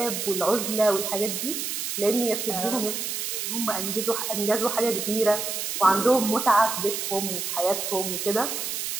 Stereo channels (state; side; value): noise; right; hiss, 3 dB below the sound